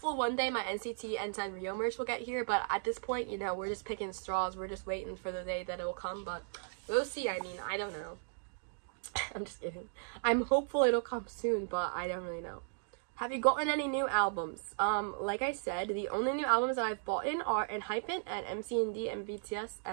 one day my NCT and Sanrio merch will get here, but at this point, you know, we're just picking straws. We're just waiting for the day that it will come, but we'll see. I mean, I don't know. I'm just kidding. I'm hopeful it'll come soon, but I don't really know. Have you gotten any new albums? Like I said, the only new albums that I've bought in are ENHYPEN and MCND and BTS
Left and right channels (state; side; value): silent; left; digital silence